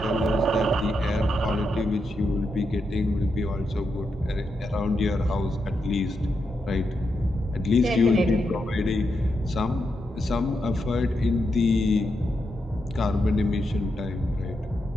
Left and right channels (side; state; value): both; normal; correlation 0.84